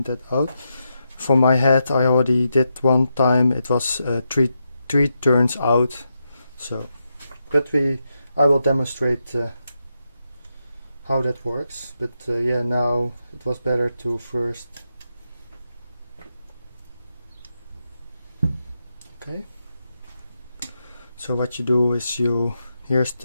that out. For my head, I already did one time. It was three turns out. So, but I will demonstrate how that works. But yeah, now it was better to first. Okay. So what you do is here's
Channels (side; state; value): both; inverted; correlation -0.85